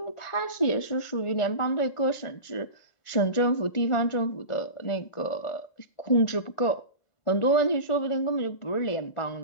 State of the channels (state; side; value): late; right; 1.4 ms